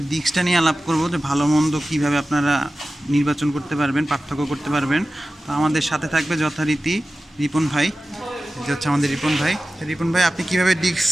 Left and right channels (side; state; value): both; normal; correlation 0.95